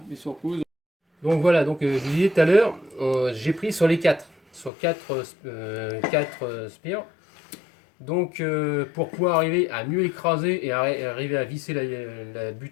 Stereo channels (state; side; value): drops out; right; at 4.7 s